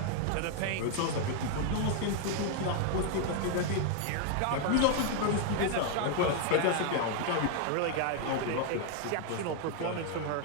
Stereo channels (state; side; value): different; both; correlation 0.00